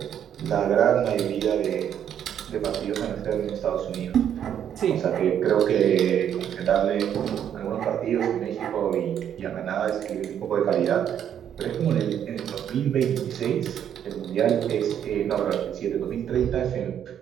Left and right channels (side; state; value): left; quieter; 9.4 dB